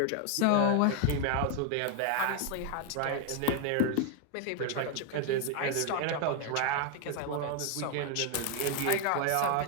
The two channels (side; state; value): both; different; correlation 0.01